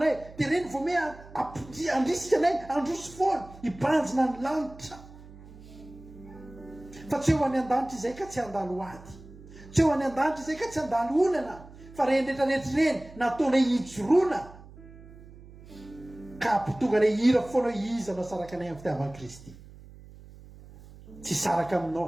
Dia reny vao me andrisika anay androso foana. Hibanjina ny lanitra. Fa tsy eo any an-danitra izay ka tsy handalo ady. Tsy eo any an-danitra izay ka tsy handalo olana. Fa reny rehetrarehetra reny nataonay hijoroana. Ka ampitonga anay hira foana iza no saraka anay amin'ny fitiavan'i Kristy. Tsy saraka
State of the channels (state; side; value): noise; right; hum, 19 dB below the sound